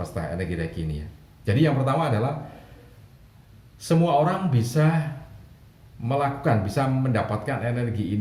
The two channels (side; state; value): both; identical; correlation 1.00